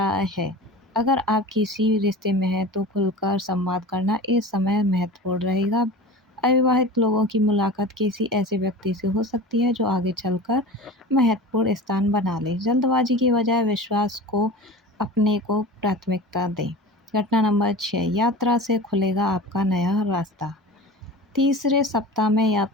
है। अगर आप किसी रिश्ते में हैं तो खुलकर संवाद करना इस समय महत्वपूर्ण रहेगा। अविवाहित लोगों की मुलाकात किसी ऐसे व्यक्ति से हो सकती है जो आगे चलकर महत्वपूर्ण स्थान बना ले। जल्दबाजी की बजाय विश्वास को अपने को प्राथमिकता दें। घटना नंबर 6, यात्रा से खुलेगा आपका नया रास्ता। तीसरे सप्ताह में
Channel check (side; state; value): both; normal; correlation 0.34